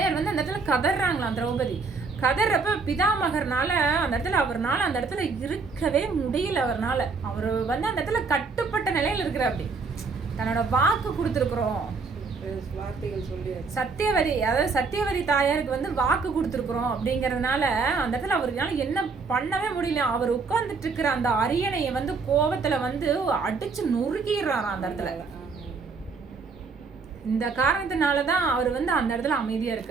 வந்து அந்த இடத்துல கதறாங்களாம். திரௌபதி கதறப்ப பிதாமகர்னால அந்த இடத்துல இருக்கவே முடியல. அவர் வந்து அந்த இடத்துல கட்டுப்பட்ட நிலையில இருக்கிற அப்படி தன்னோட வாக்கு கொடுத்துருக்குறோம். சத்தியவதி தாயாருக்கு வந்து வாக்கு கொடுத்துருக்குறோம் அப்படிங்கறதுனால அந்த இடத்துல அவருனால என்ன பண்ணவே முடியல. அவர் உட்கார்ந்துட்டு இருக்கிற அந்த அரியணையை வந்து கோபத்துல வந்து அடிச்சு நொறுக்கிடுறாராம் அந்த இடத்துல. இந்த காரணத்தினாலதான் அவர் வந்து அந்த இடத்துல அமைதியா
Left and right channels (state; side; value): quieter; left; 4.6 dB